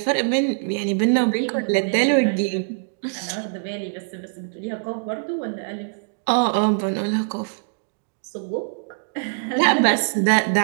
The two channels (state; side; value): silent; left; digital silence